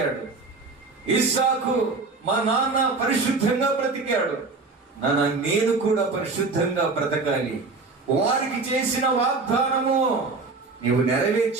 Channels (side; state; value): left; quieter; 3.9 dB